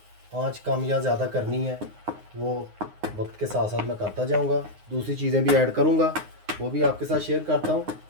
आंच कम या ज़्यादा करनी है वो वक्त के साथ साथ मैं करता जाऊंगा। दूसरी चीज़ें भी ऐड करूंगा, वो भी आपके साथ शेयर करता हूं।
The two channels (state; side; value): late; left; 9.6 ms